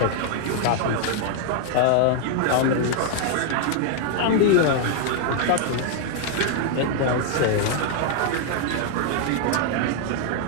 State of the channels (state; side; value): different; both; correlation 0.00